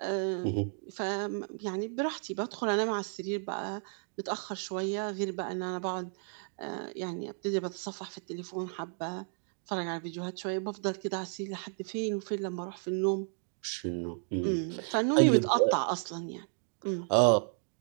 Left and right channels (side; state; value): left; silent; 56 dB below the other